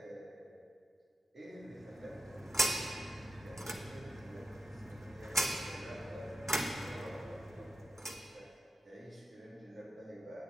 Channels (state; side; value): normal; both; correlation 0.90